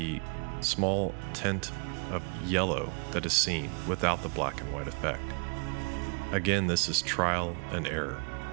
small tint of yellow that is seen without the black and white effect. Again, this is trial and error.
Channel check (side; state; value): left; quieter; 38.6 dB